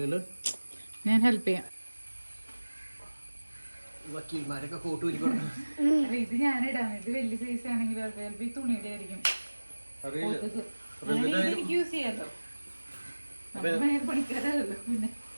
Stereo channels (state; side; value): inverted; both; correlation -1.00